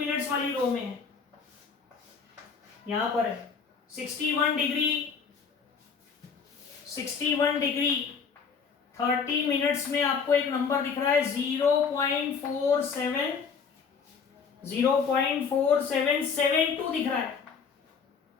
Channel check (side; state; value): right; quieter; 5.9 dB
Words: वाली रो में है, यहां पर है 61 डिग्री 30 मिनट्स में आपको एक नंबर दिख रहा है 0.4772 दिख रहा है